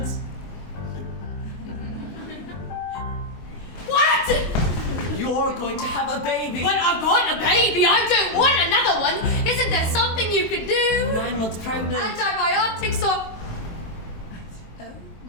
What? You're going to have a baby! But I've got a baby! I don't want another one! Isn't there something you could do? 9 months pregnant! Antibiotics or... Oh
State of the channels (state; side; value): late; right; 23 ms